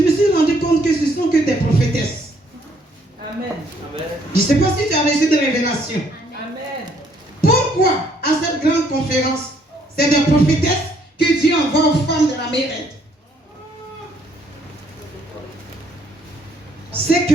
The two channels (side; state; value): both; normal; correlation 0.66